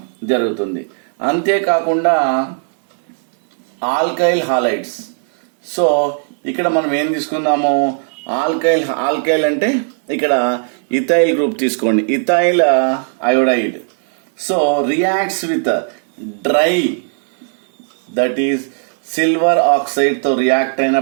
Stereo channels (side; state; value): left; silent; 64 dB below the other